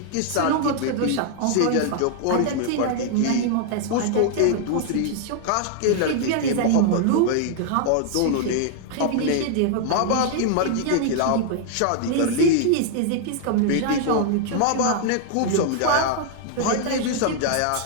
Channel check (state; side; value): different; both; correlation 0.00